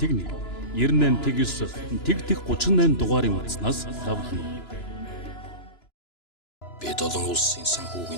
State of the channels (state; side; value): late; right; 2.9 ms